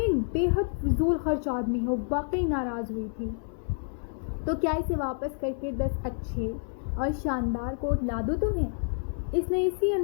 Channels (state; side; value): silent; right; 59 dB below the other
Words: بے حد فضول خرچ آدمی ہو۔ واقعی ناراض ہوئی تھی۔ تو کیا اسے واپس کر کے 10 اچھے اور شاندار کوٹ لا دو تمہیں؟ اس نے اسی